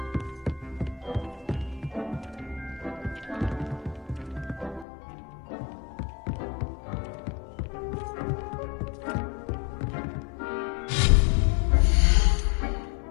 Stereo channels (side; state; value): right; drops out; at 4.9 s